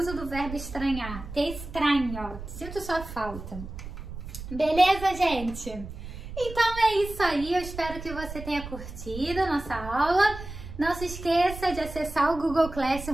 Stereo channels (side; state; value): right; noise; rumble, 11 dB below the sound